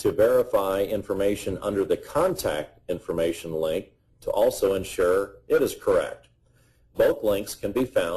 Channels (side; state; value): both; identical; correlation 1.00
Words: verify information under the contact information link to also ensure it is correct. Both links can be